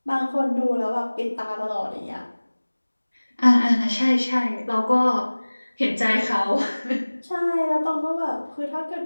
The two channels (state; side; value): inverted; both; correlation -1.00